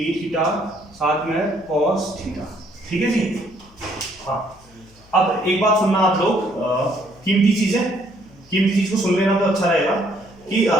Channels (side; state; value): left; noise; hum, 27 dB below the sound